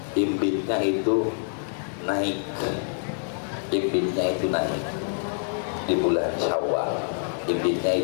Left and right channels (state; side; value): silent; right; digital silence